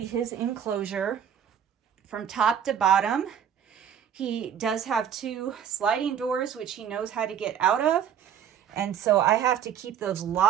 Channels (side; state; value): left; quieter; 8.9 dB